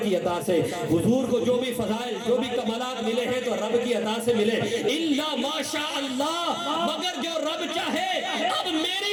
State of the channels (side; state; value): both; identical; correlation 1.00